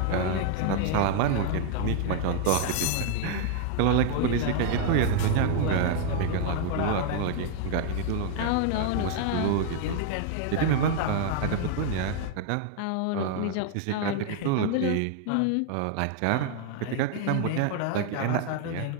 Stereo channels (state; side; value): different; both; correlation 0.00